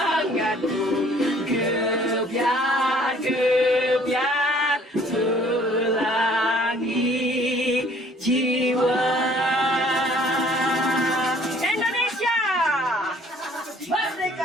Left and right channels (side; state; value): both; normal; correlation 0.57